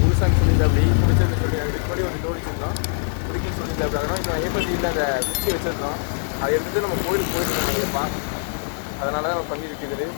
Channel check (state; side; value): silent; right; 59 dB below the other